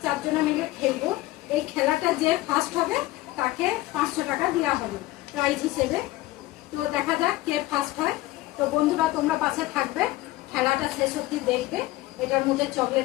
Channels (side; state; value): right; quieter; 18.0 dB